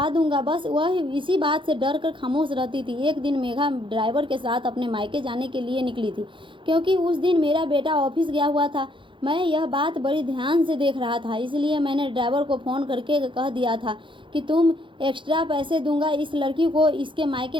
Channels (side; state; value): left; late; 0.24 ms